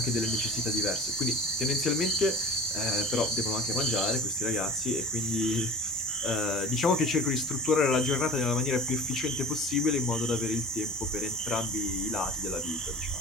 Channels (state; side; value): normal; both; correlation 0.39